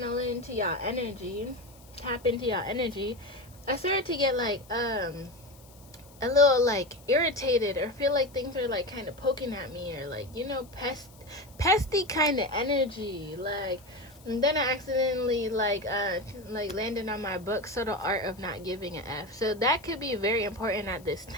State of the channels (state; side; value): noise; left; hiss, 25 dB below the sound